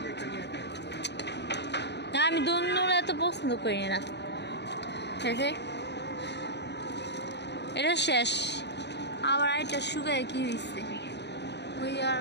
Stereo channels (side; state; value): right; late; 0.50 ms